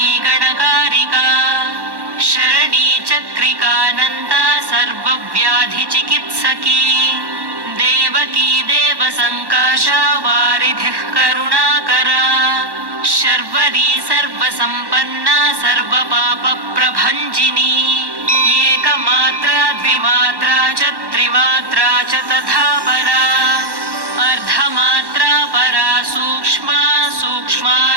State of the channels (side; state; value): left; late; 1.1 ms